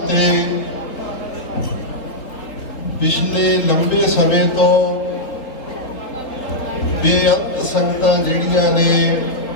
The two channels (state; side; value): late; right; 3.7 ms